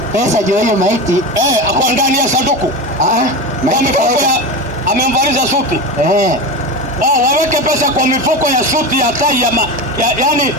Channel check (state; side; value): normal; both; correlation 0.23